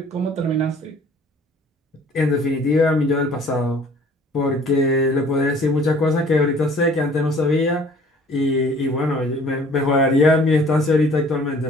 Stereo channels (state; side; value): normal; both; correlation 0.53